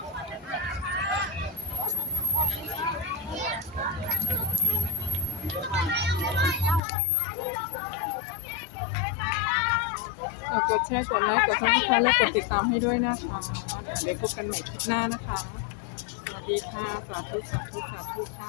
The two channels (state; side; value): drops out; right; at 6.8 s